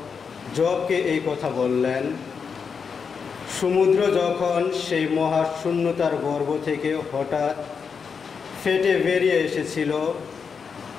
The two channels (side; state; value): right; quieter; 6.0 dB